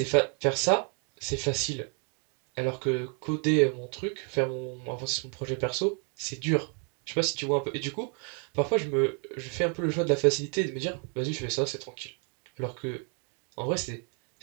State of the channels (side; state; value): left; quieter; 39.7 dB